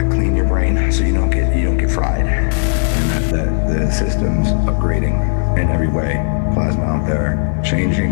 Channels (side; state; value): right; silent; 61 dB below the other